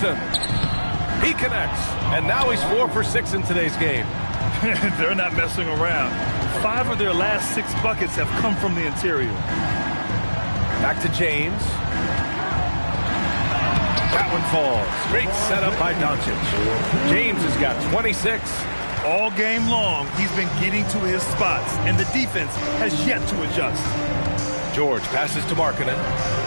He connects, and now he's 4 for 6 in today's game. They're not messing around. 5 of their last 6 buckets have come from the interior. Back to James. That one falls. Great setup by Doncic. James has got 26. All game long, he's been getting to his spots, and the defense has yet to adjust. George passes to Markkanen.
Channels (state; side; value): inverted; both; correlation -1.00